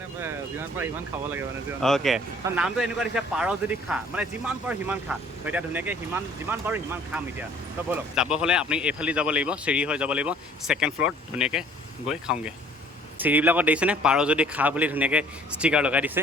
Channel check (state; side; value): normal; both; correlation 0.54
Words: অ'কে তো নামটো এনেকুৱা দিছে পাৰ যদি খা মানে যিমান পাৰোঁ সিমান খা তো এতিয়া ধুনীয়াকৈ যিমান পাৰোঁ সিমান খাম এতিয়া তো ব'লক যাব হ'লে আপুনি এইফালে যাব লাগিব চিৰি হৈ যাব লাগিব ছেকেণ্ড ফ্ল'ৰত ধুনীয়াকৈ গৈ খাওঁগৈ চিৰিবিলাকত দেখিছেনে পাৰ যদি খা বুলি ধুনীয়াকৈ ষ্টিকাৰ লগাই দিছে